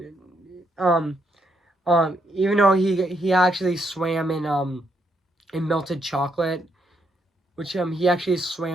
um even though he actually swam in melted chocolate which he actually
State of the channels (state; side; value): normal; both; correlation 0.76